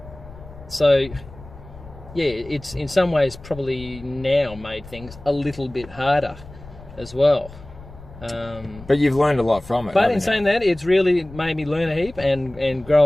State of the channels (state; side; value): noise; left; rumble, 18 dB below the sound